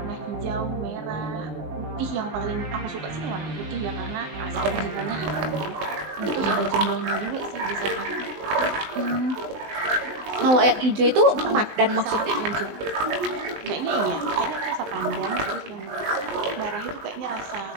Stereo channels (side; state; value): left; late; 19 ms